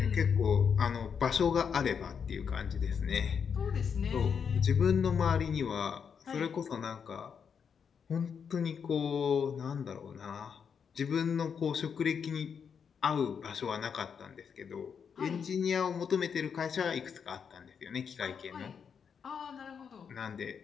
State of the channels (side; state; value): right; quieter; 6.8 dB